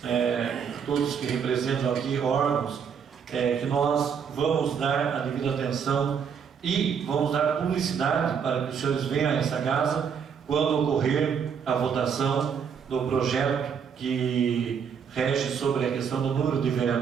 todos que representam aqui órgãos, que nós vamos dar a devida atenção e vamos dar publicidade para que os senhores venham a essa casa quando ocorrer a votação do projeto que rege sobre a questão do número de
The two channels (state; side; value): quieter; left; 7.1 dB